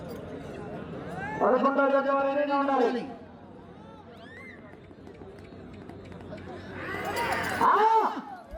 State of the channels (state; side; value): identical; both; correlation 1.00